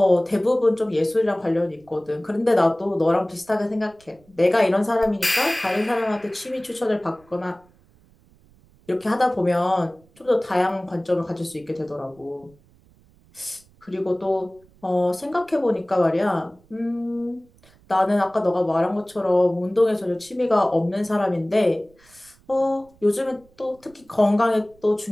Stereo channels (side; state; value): right; noise; rumble, 30 dB below the sound